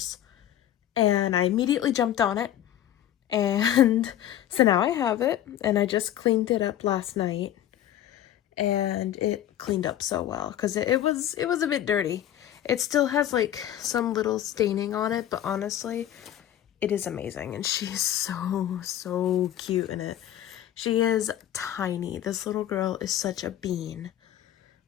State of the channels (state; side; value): quieter; right; 11.7 dB